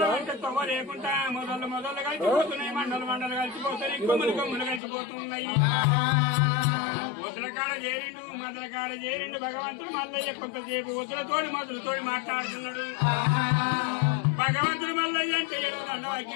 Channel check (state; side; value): drops out; right; at 4.8 s